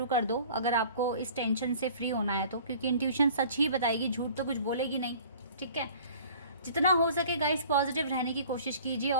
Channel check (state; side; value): inverted; both; correlation -0.48